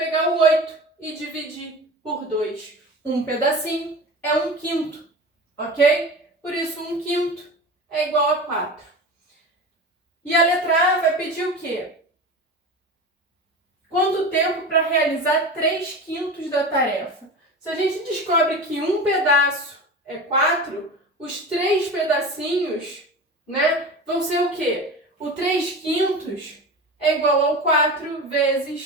o 8 e dividir por 2. Um pedacinho é 1/5, ok? Por isso, 1/5 é igual a 4. E a letra A vai pedir o quê? Quanto tempo para realizar 3/5 da tarefa? Se a gente descobre que um pedaço é 4, os 3 pedacinhos, né, vão ser o quê? O 3/5 é igual ao 4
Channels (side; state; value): both; normal; correlation 0.30